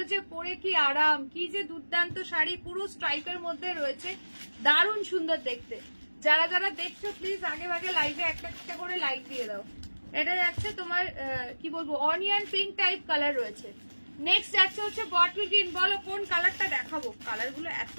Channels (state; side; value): inverted; both; correlation -1.00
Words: যে পরে কি আরাম, কি যে দুর্দান্ত শাড়ি, পুরো স্ট্রাইপের মধ্যে রয়েছে, দারুণ সুন্দর দেখতে। যারা যারা দেখছো প্লিজ আগে ভাগে লাইভে একটা একটা করে লাইক দিয়ে দাও। এটা যাচ্ছে তোমার কি বলবো, অনিয়ন পিঙ্ক টাইপ কালার রয়েছে। নেক্সট যাচ্ছে হচ্ছে বটল গ্রিন। বলো কোন কালারটা দেখাবো, কালার গুলো এত